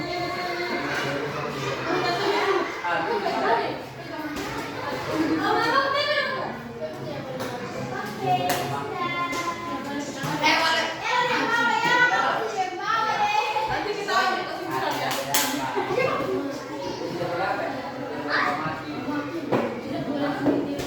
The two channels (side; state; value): both; identical; correlation 1.00